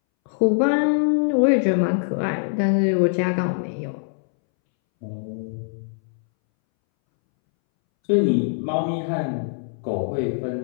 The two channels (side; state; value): right; silent; 63 dB below the other